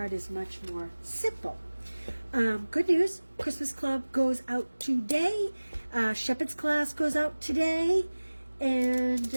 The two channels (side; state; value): both; inverted; correlation -1.00